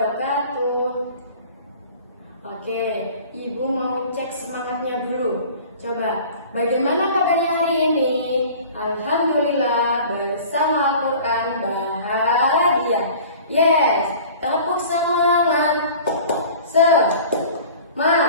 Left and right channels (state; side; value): inverted; both; correlation -0.44